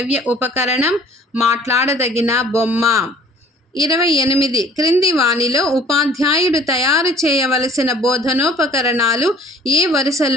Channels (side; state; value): both; normal; correlation 0.52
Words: ఉపకరణం మాట్లాడదగిన బొమ్మ. 28. క్రింది వానిలో ఉపాధ్యాయుడు తయారు చేయవలసిన బోధనోపకరణాలు ఏ